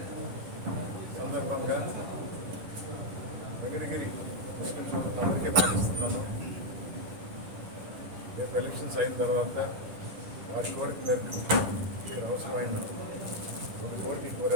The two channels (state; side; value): late; left; 10 ms